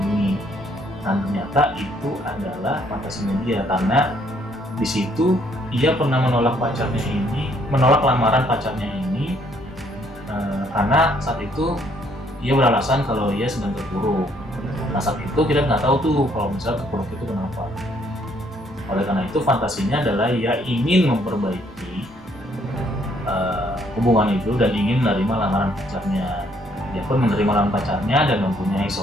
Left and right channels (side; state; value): both; normal; correlation 0.67